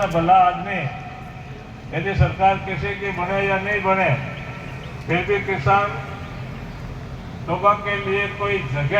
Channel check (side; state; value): both; identical; correlation 1.00